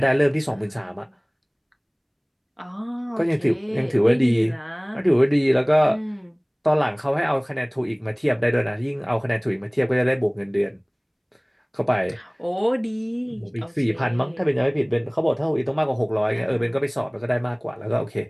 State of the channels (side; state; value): both; identical; correlation 1.00